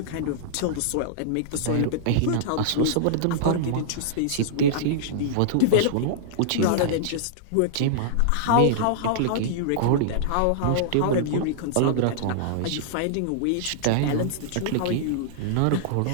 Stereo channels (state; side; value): different; both; correlation -0.02